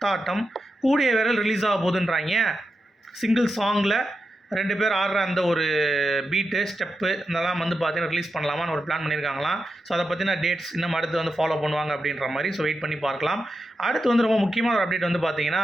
கூடிய விரல் ரிலீஸ் ஆக போகுதுன்றாங்க. சிங்கிள் சாங்கில் 2 பேர் ஆடுற அந்த ஒரு பீட்டு ஸ்டெப்பு இதெல்லாம் வந்து பார்த்தீங்கன்னா ரிலீஸ் பண்ணலாமான்னு ஒரு பிளான் பண்ணியிருக்காங்களாம். ஸோ அதை பற்றின டேட்ஸ் இன்னும் அடுத்து வந்து ஃபாலோ பண்ணுவாங்க அப்படின்ற மாதிரி. ஸோ வெயிட் பண்ணி பார்க்கலாம். அடுத்து வந்து ரொம்ப முக்கியமான ஒரு அப்டேட் வந்து பார்த்தீங்கன்னா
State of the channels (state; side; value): normal; both; correlation 0.89